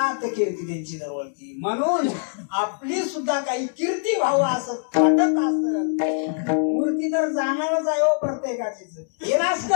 कीर्ती त्यांची दरवळती. म्हणून आपली सुद्धा काही कीर्ती व्हावं असं वाटत असत. मूर्ती तर जाणारच आहे हो प्रत्येकाचीच. हे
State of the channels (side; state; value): right; silent; 63 dB below the other